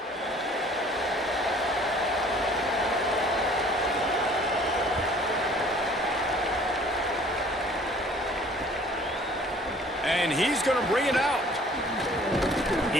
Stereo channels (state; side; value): normal; both; correlation 0.53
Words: And he's going to bring it out.